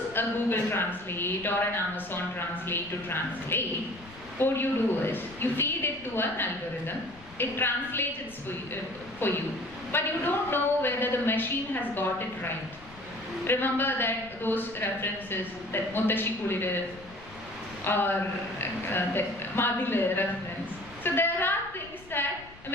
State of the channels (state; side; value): noise; left; rumble, 21 dB below the sound